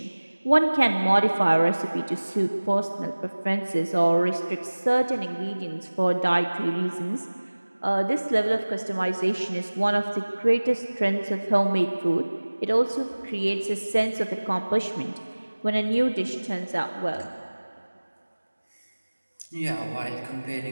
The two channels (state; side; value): inverted; both; correlation -1.00